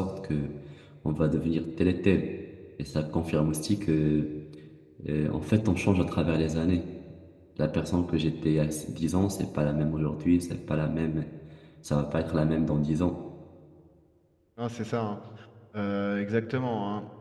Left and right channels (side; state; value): both; identical; correlation 1.00